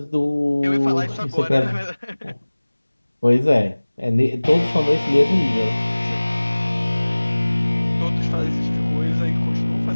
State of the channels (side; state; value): both; inverted; correlation -1.00